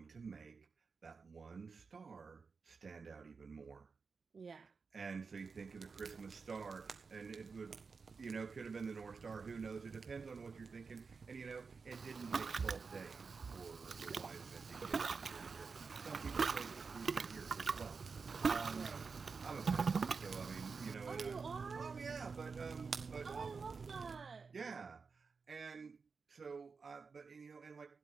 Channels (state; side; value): quieter; left; 5.0 dB